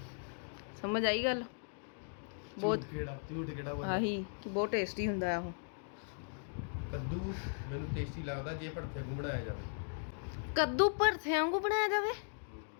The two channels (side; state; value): right; silent; digital silence